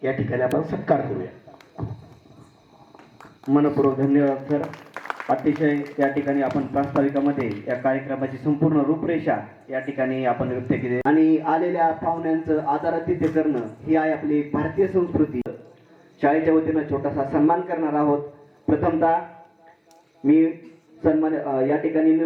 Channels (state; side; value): identical; both; correlation 1.00